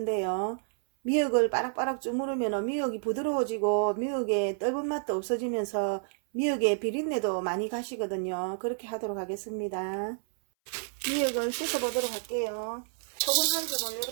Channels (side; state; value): left; silent; 58 dB below the other